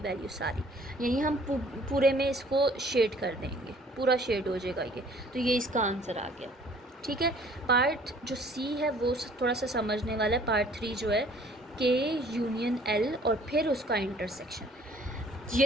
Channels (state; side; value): normal; both; correlation 0.56